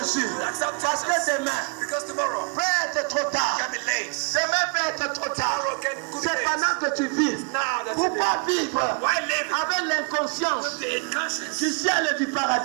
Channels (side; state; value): left; quieter; 36.1 dB